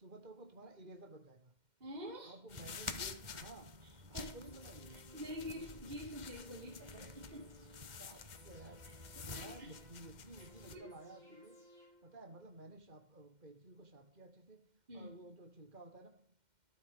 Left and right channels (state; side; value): late; left; 2.1 ms